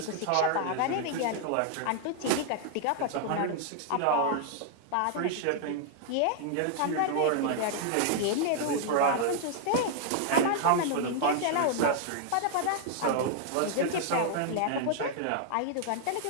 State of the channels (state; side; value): different; both; correlation -0.01